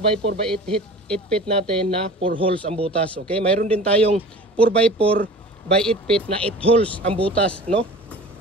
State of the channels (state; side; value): normal; both; correlation 0.40